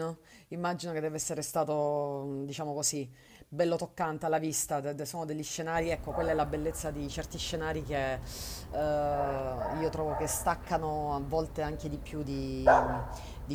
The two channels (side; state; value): both; identical; correlation 1.00